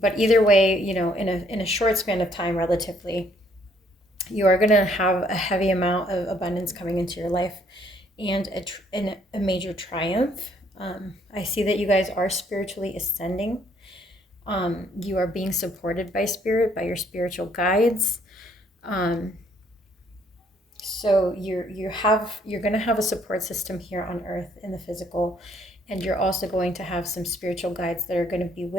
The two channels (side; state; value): both; normal; correlation 0.66